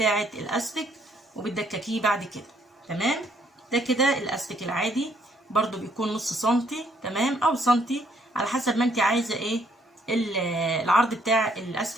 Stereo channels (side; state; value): both; normal; correlation 0.67